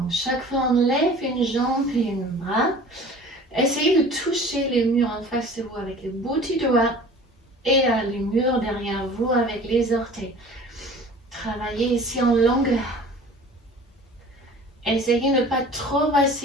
chaque fois, on lève une jambe et un bras. Essayez de toucher les murs en face de vous avec les bout du doigt et les murs derrière vous avec les orteils. Travaillez ici en longueur. Essayez de ne pas trop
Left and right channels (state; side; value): normal; both; correlation 0.44